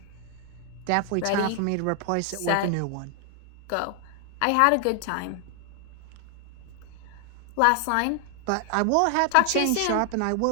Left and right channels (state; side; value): different; both; correlation 0.00